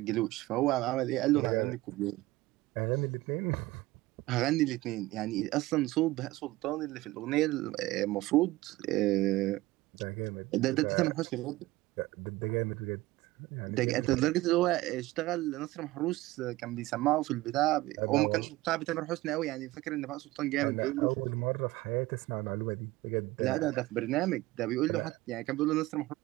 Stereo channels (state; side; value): quieter; left; 18.7 dB